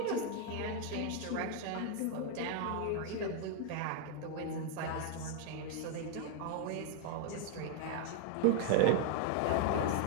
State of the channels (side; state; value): both; different; correlation 0.00